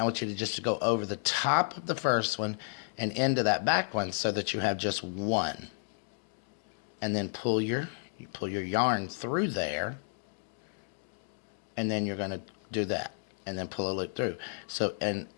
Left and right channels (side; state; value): right; silent; digital silence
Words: I want you to just go over the top of the first one and into that back one so that you have just one, and then pull your yarn through there, and then you're going to do that and then pull a loop through. So, and